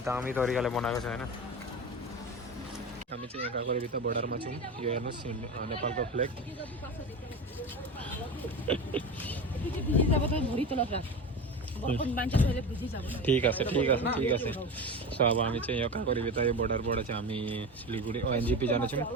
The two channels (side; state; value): both; normal; correlation 0.26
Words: दामी तरिकाले बनाएको छ होइन हामी चाहिँ यहाँ काँक्रे भित्र बोर्डरमा छौँ यो हेर्नुहोस् नेपालको फ्ल्याग ठीक আছে सो अब हामी चाहिँ यो काँक्रे भित्र यो बोर्डरबाट चाहिँ हामी सिलगढी एनजेपी जानेछौँ